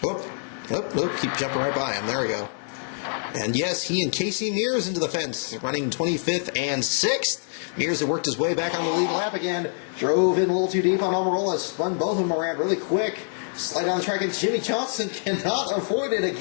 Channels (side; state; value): right; silent; digital silence